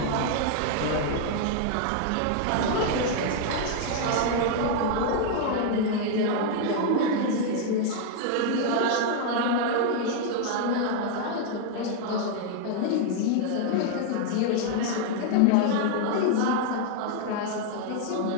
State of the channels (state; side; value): different; both; correlation 0.00